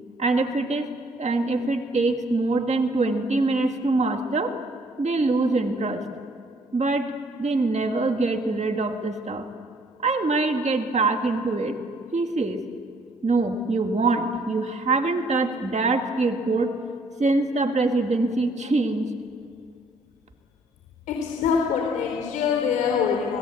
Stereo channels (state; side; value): normal; both; correlation 0.62